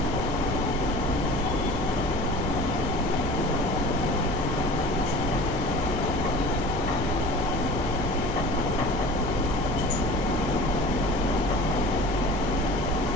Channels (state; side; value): normal; both; correlation 0.40